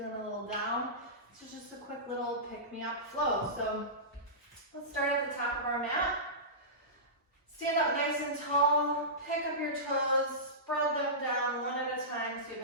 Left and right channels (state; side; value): normal; both; correlation -0.19